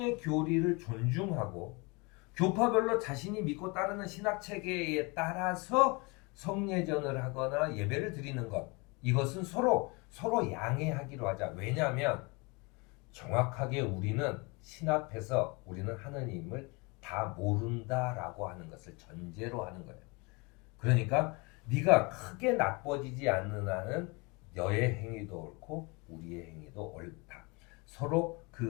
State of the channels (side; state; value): right; quieter; 28.3 dB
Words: 교리를 존중하고 교파별로 자신이 믿고 따르는 신학 체계에 따라서 성례전을 하거나 예배를 드리는 것, 이것은 서로 양해하기로 하자. 왜냐하면 정확하게 우리는 신 앞에서 우리는 하느님을 다 모른다라고 하는 것을 전제로 하는 거예요. 그러니까 네가 크게 나빠지지 않는 한은 너의 행위도 옳고 우리의 행위도 옳다. 서로